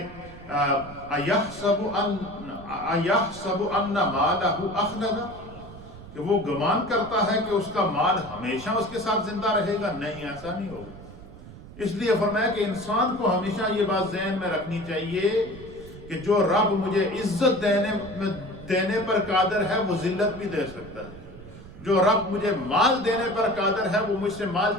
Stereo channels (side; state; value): right; noise; rumble, 16 dB below the sound